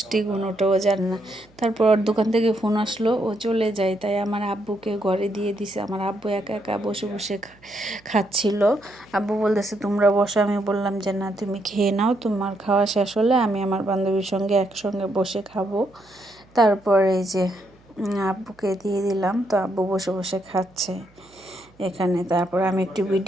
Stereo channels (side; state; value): right; noise; hum, 30 dB below the sound